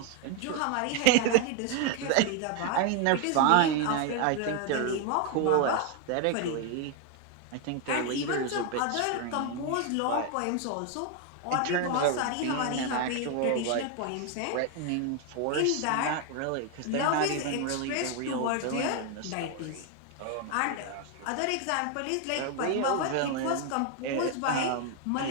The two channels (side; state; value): both; different; correlation 0.01